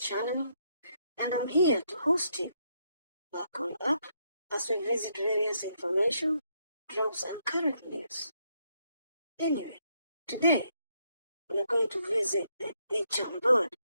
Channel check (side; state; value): both; inverted; correlation -0.75